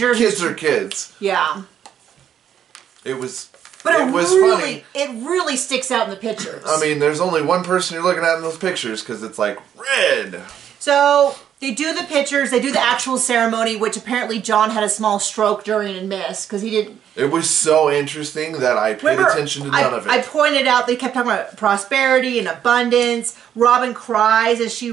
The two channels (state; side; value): quieter; left; 9.4 dB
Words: Kids are kids. Yeah. It was. But it was really, funny. It really sticks out in the pictures. I mean, there's only one person you're looking at in those pictures because it's like red. So they do the pictures. They do the actual ceremony, which apparently John had a small stroke during and missed because he didn't. It was so interesting that I paid attention to none of it. I pointed out they kept talking about prosperity and abundance. Robin cries as she